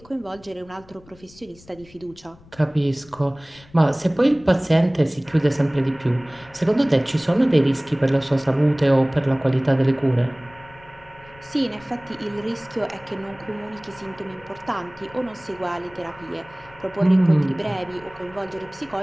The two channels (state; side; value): noise; left; rumble, 24 dB below the sound